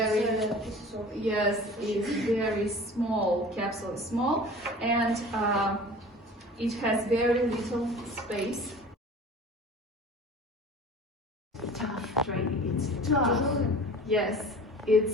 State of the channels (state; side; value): normal; both; correlation 0.41